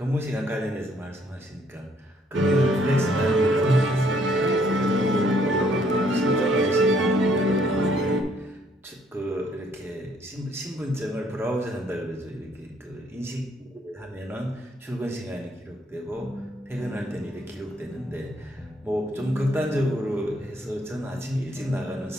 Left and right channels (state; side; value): normal; both; correlation 0.67